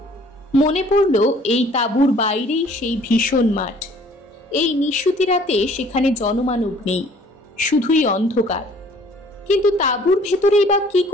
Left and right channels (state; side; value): normal; both; correlation 0.56